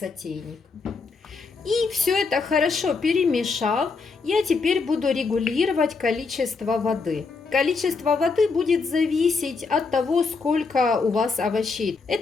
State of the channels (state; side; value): quieter; right; 4.5 dB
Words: И все это хорошо перемешав, я теперь буду регулировать количество воды. Количество воды будет зависеть от того, сколько у вас овощей.